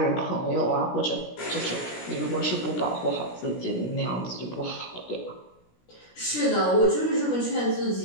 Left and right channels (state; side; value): late; right; 17 ms